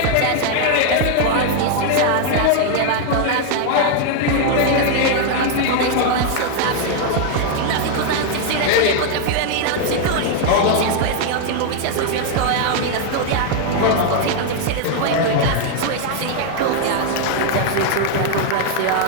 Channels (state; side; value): different; both; correlation 0.00